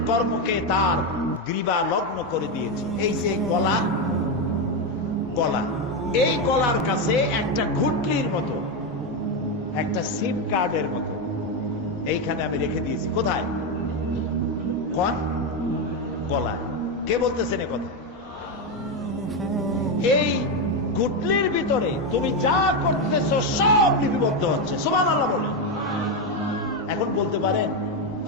কর্মকে তার গ্রীবা লগ্ন করে দিয়েছি। এই যে গলা, গলা, এই গলার কাছে একটা ঘুটলির মতো, একটা সিম কার্ডের মতো এইখানে আমি রেখে দিয়েছি। কোথায়? কোন গলায়? কে বলতেছেন এ কথা? এই ঘুটলির ভিতরে তুমি যা করতেছো সব লিপিবদ্ধ হচ্ছে। সুবহানাল্লাহ বলেন। এখন বলতে পারেন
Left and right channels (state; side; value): normal; both; correlation 0.08